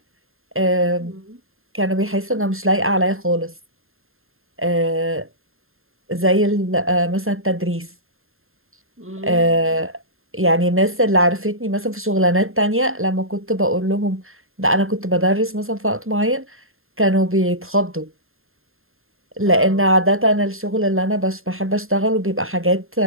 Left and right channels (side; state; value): left; late; 0.61 ms